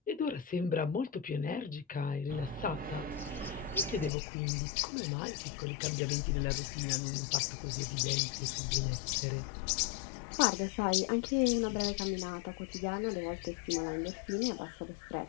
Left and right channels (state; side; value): drops out; right; at 4.1 s